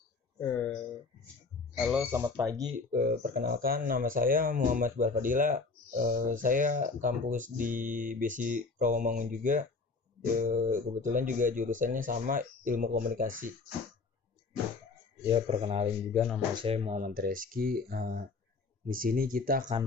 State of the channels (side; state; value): right; quieter; 4.2 dB